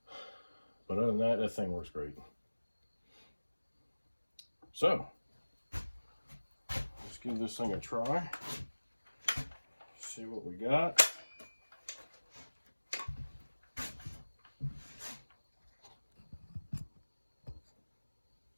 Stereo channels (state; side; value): inverted; both; correlation -1.00